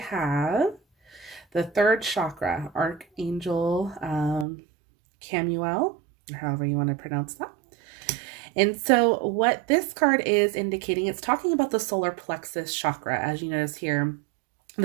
the 3rd chakra, Archangel Camuel, or however you want to pronounce that. And so what this card is indicating, it's talking about the solar plexus chakra, as you notice here,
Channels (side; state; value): left; drops out; at 4.5 s